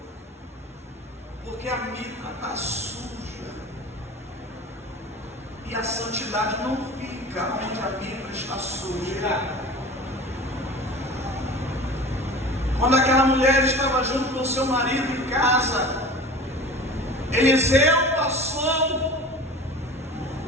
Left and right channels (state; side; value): normal; both; correlation 0.38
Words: Porque a mitra está suja. E a santidade não fica onde a mitra está suja. Quando aquela mulher estava junto com seu marido em casa, Eliseu passou